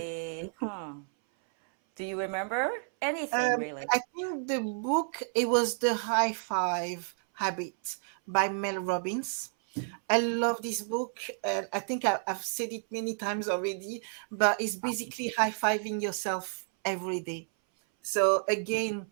Do you remember anything really? I think the book, it was The High Five Habit by Mel Robbins. I love this book. I think I've said it many times already, but it's basically high fiving yourself every day. So again,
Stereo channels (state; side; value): silent; left; 57 dB below the other